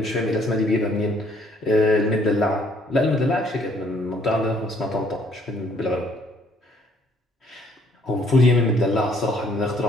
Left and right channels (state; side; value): normal; both; correlation 0.64